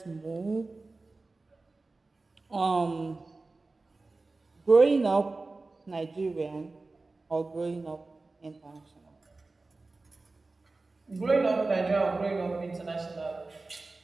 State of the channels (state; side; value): quieter; left; 3.5 dB